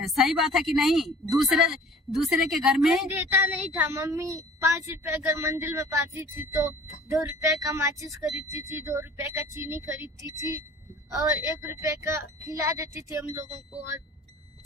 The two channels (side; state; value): both; normal; correlation 0.47